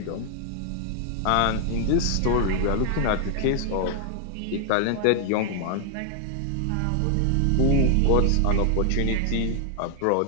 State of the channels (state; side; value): different; both; correlation 0.00